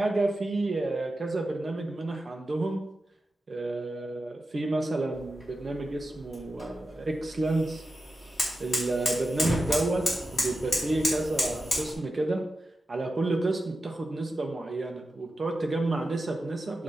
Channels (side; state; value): both; normal; correlation 0.92